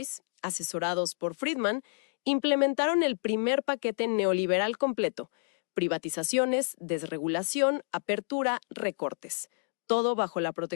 asesorados por Friedman, implementaron el primer paquete neoliberal completo: privatizaciones, desregulación, apertura, recortes. Todo bajo la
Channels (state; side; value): silent; right; digital silence